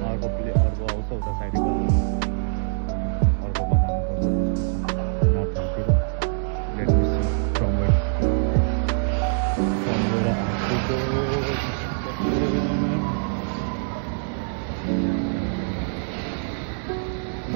अर्को आउँछ उता साइडको अर्को बनाउनु नर्थतिर। Let me see from where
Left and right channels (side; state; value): left; silent; digital silence